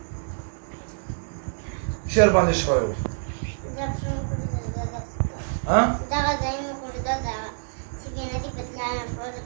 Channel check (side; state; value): left; silent; digital silence